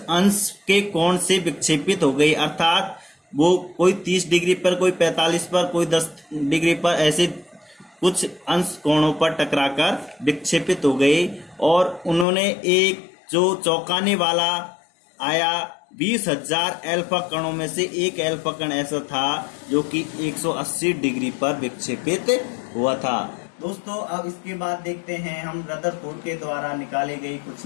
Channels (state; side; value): drops out; right; at 12.2 s